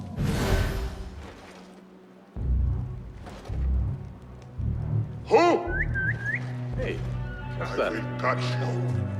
Who? Hey, what's that? Touch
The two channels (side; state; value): both; identical; correlation 1.00